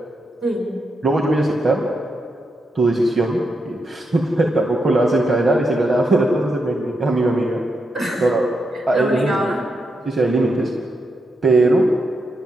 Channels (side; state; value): both; normal; correlation 0.83